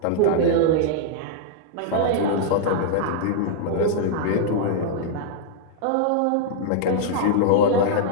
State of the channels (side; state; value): both; different; correlation -0.01